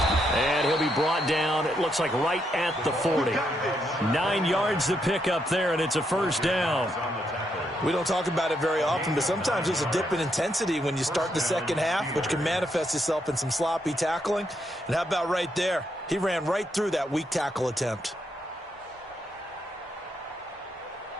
And he'll be brought down, it looks like right at the 40. 9 yards to pick up there, and it's a 1st down. We don't talk about it very often, but sometimes there's a dip in intensity when you start the 2nd half, which can manifest itself in some sloppy tackling. And how about right there? He ran right through that weak tackle attempt.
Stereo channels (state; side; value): normal; both; correlation 0.78